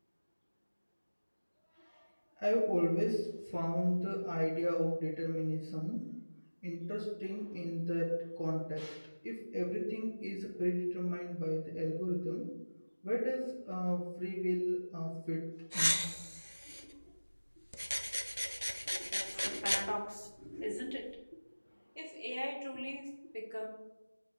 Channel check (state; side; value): inverted; both; correlation -1.00